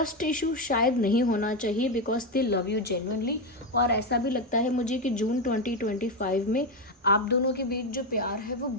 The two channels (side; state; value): both; normal; correlation 0.09